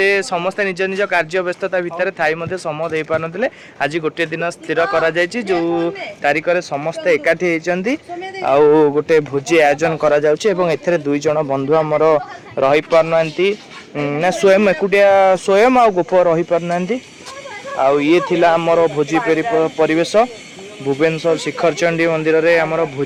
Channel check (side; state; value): both; identical; correlation 1.00